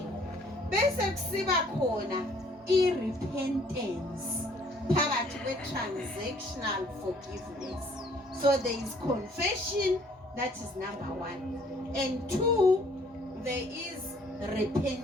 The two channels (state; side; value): normal; both; correlation 0.60